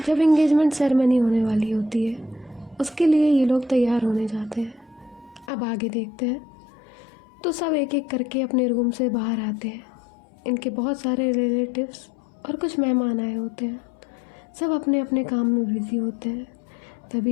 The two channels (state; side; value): drops out; right; at 5.5 s